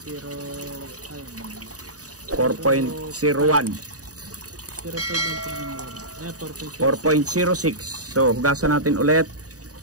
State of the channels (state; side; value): late; left; 0.67 ms